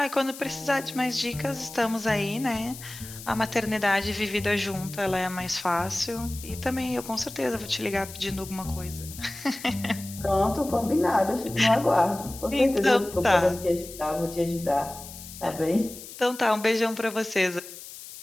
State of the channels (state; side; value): noise; left; hiss, 14 dB below the sound